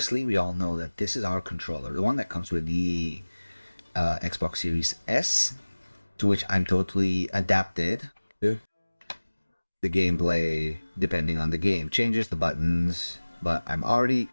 we all know that this is our controller, the one that comes with the Xbox Series S, to which I'm totally adapted. The gameplay, depending on the game, changes the buttons, but I'm already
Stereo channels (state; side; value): inverted; both; correlation -1.00